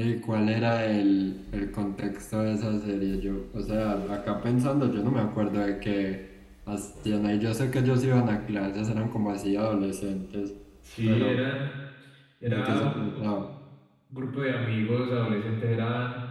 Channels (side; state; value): both; identical; correlation 1.00